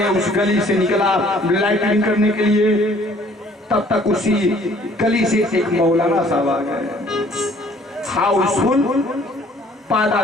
उस गली से निकला लाइटिंग करने के लिए, तब तक उसी गली से एक मौलाना साहब आ गए। हाउसफुल पादा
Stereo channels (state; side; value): normal; both; correlation 0.57